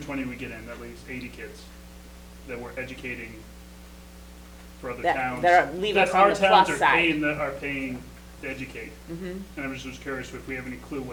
we get in, that leaves 80 kids that we're educating for other towns. Leave us on our the towns plus are side. paying to educate. Mhm. And I was just curious if we have any clue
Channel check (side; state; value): both; identical; correlation 1.00